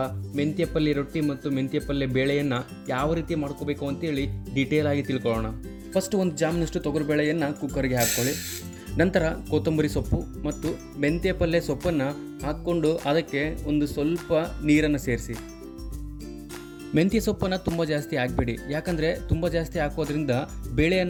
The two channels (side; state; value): both; identical; correlation 1.00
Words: ಮೆಂತ್ಯ ಪಲ್ಯ ರೊಟ್ಟಿ ಮತ್ತು ಮೆಂತ್ಯ ಪಲ್ಯ ಬೇಳೆಯನ್ನು ಯಾವ ರೀತಿ ಮಾಡ್ಕೋಬೇಕು ಅಂತೇಳಿ ಡೀಟೇಲ್ ಆಗಿ ತಿಳ್ಕೊಳ್ಳೋಣ. ಫಸ್ಟ್ ಒಂದು ಜಾಮ್ನಷ್ಟು ತೊಗರಿಬೇಳೆಯನ್ನು ಕುಕ್ಕರ್ಗೆ ಹಾಕ್ಕೊಳ್ಳಿ. ನಂತರ ಕೊತ್ತಂಬರಿ ಸೊಪ್ಪು ಮತ್ತು ಮೆಂತ್ಯ ಪಲ್ಯ ಸೊಪ್ಪನ್ನು ಹಾಕ್ಕೊಂಡು ಅದಕ್ಕೆ ಒಂದು ಸ್ವಲ್ಪ ನೀರನ್ನು ಸೇರಿಸಿ. ಮೆಂತ್ಯ ಸೊಪ್ಪನ್ನು ತುಂಬ ಜಾಸ್ತಿ ಹಾಕಬೇಡಿ, ಯಾಕಂದರೆ ತುಂಬ ಜಾಸ್ತಿ ಹಾಕೋದ್ರಿಂದ ಬೇಳೆ